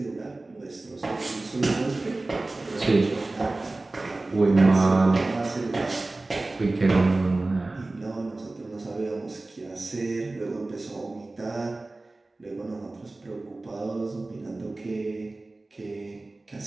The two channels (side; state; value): left; quieter; 3.1 dB